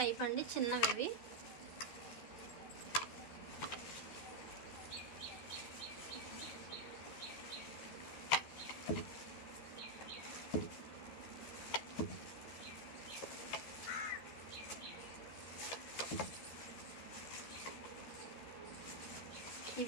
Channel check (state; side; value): late; right; 13 ms